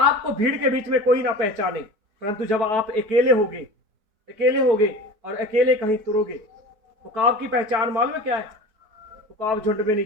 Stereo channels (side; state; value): left; late; 4.6 ms